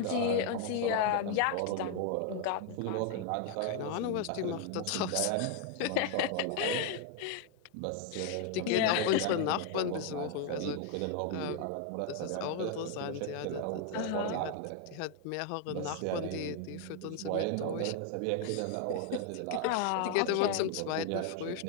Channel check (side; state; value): both; different; correlation 0.00